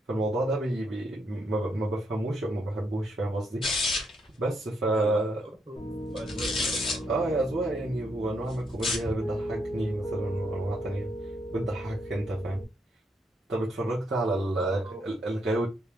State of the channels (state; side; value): normal; both; correlation 0.77